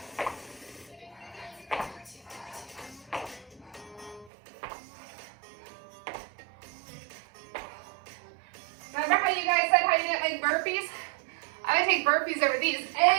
Remember how you guys said how you didn't like burpees? I I take burpees over these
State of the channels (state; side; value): drops out; left; at 4.3 s